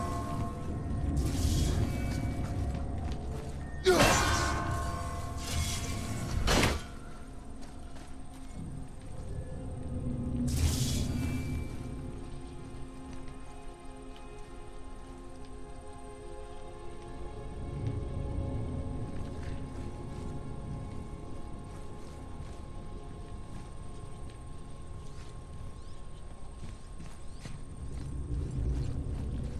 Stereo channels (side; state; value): both; identical; correlation 1.00